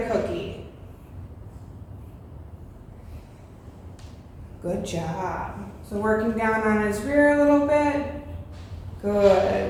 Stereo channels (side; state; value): both; identical; correlation 1.00